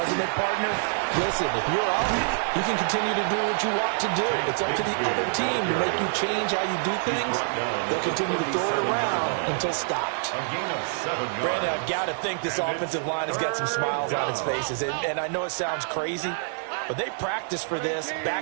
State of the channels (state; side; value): silent; left; 61 dB below the other